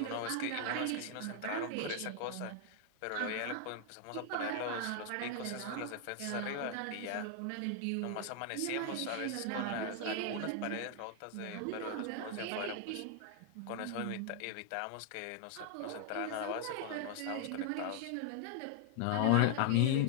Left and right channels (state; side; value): different; both; correlation 0.00